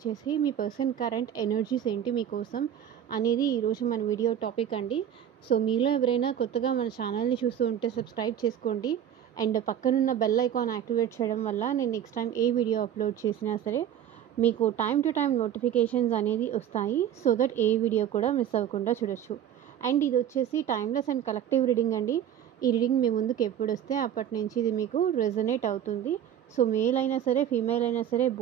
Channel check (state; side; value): quieter; left; 9.9 dB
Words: మీ పర్సన్ కరెంట్ ఎనర్జీస్ ఏంటి మీకోసం అనేది ఈరోజు మన వీడియో టాపిక్ అండి. సో మీలో ఎవరైనా కొత్తగా మన ఛానల్ని చూస్తూ ఉంటే సబ్స్క్రైబ్ చేసుకోండి అండ్ పక్కనున్న బెల్ ఐకాన్ యాక్టివేట్ చేయడం వల్ల నేను నెక్స్ట్ టైం ఏ వీడియో అప్లోడ్ చేసినా సరే మీకు టైం టు టైం నోటిఫికేషన్స్ అనేది వస్తాయి. సో దట్ ఏ వీడియో కూడా మిస్ అవ్వకుండా చూడొచ్చు. అండ్ ఇది వచ్చేసి టైమ్లెస్ అండ్ కలెక్టివ్ రీడింగ్ అండి. ఈ రీడింగ్ మీ ముందుకు ఎప్పుడు వస్తే అప్పటి నుంచి ఇది మీకు రెజనేట్ అవుతుంది. సో మేల్ అయినా సరే ఫీమేల్ అయినా సరే